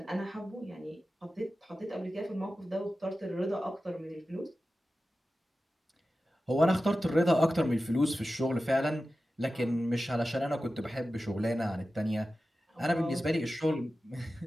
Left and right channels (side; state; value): both; normal; correlation 0.94